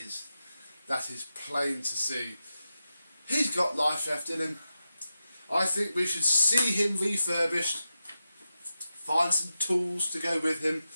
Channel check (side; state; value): both; inverted; correlation -0.90